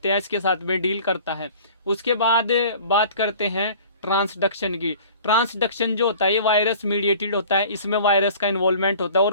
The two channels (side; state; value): both; inverted; correlation -0.45